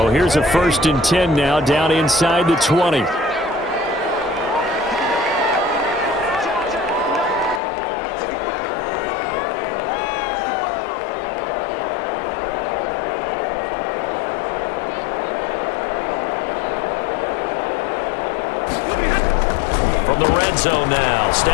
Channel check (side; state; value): right; drops out; at 7.6 s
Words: here's a 1st and 10 now down inside the 20. From the red zone now,